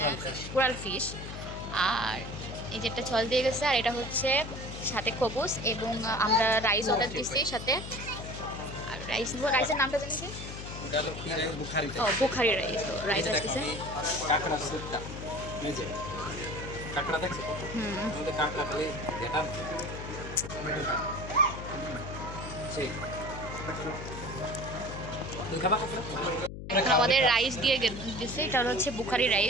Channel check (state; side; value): noise; left; hum, 9 dB below the sound